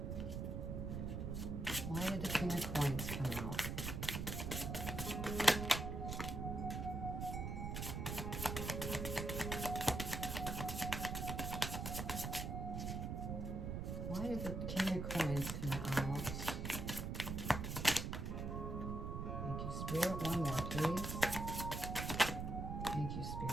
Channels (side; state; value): right; noise; rumble, 3 dB below the sound